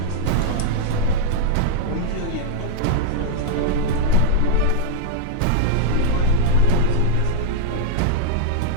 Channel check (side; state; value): both; different; correlation -0.01